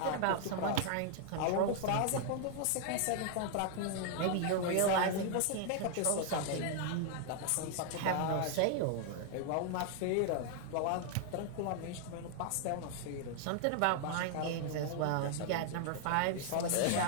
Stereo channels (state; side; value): different; both; correlation 0.00